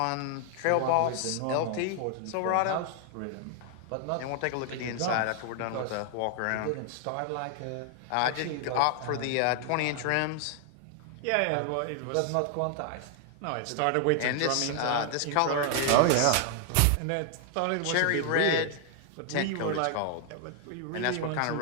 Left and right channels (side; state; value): both; different; correlation 0.00